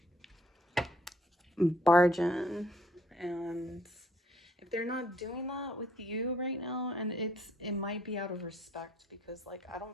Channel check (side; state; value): both; normal; correlation 0.63